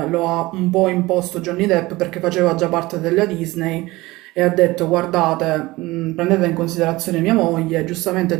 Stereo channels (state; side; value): quieter; left; 20.1 dB